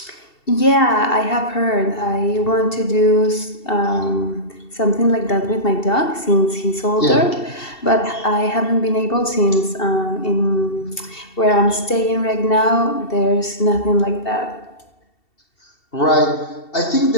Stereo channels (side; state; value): right; late; 2.7 ms